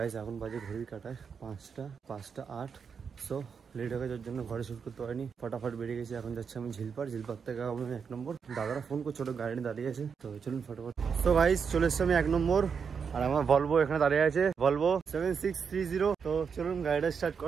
এখন বাজে ঘড়ির কাটায় 5টা 8। সো লেট হয়ে যাওয়ার জন্য ঘরে শুট করতে পারিনি, ফটাফট বেরিয়ে গেছি। এখন যাচ্ছি আমি ঝিলপার থেকে আমি 1 নম্বর। দাদারা ফোন করছে, ছোট গাড়ি দাঁড়িয়ে আছে, তো চলুন ফটাফট। সো গাইস চলে এসছি আমি 1 নম্বর আর আমার ভলভো এখানে দাঁড়িয়ে আছে, ভলভো 7630। তো চলুন গাড়িটা স্টার্ট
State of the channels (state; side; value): quieter; left; 6.3 dB